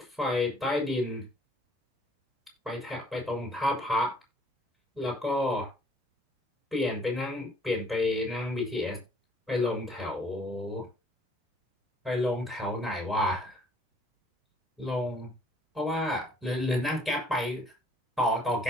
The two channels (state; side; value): normal; both; correlation 0.60